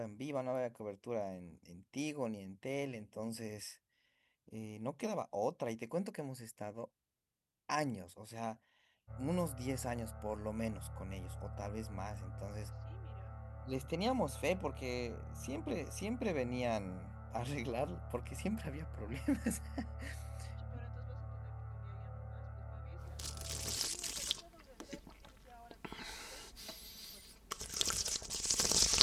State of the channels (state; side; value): identical; both; correlation 1.00